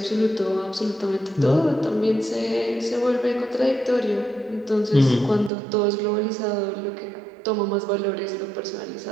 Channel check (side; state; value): left; drops out; at 5.5 s